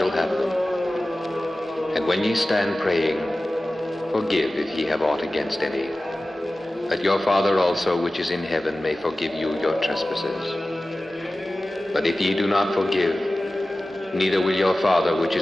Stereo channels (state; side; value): normal; both; correlation 0.96